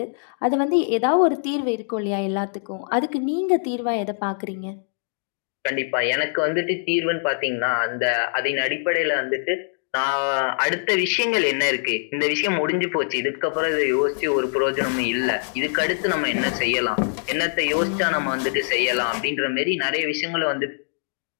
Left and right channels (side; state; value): right; silent; digital silence